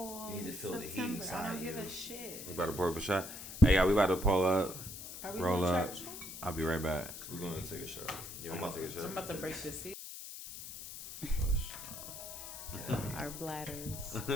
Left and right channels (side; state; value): left; noise; hiss, 10 dB below the sound